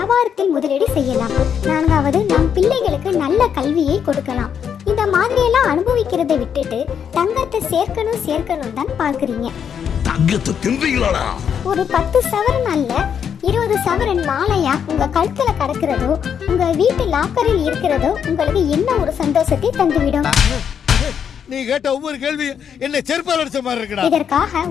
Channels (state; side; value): quieter; right; 7.9 dB